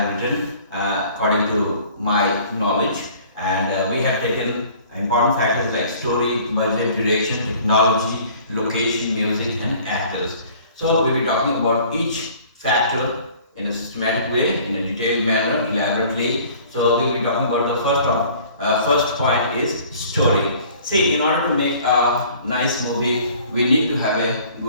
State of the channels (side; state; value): both; inverted; correlation -0.52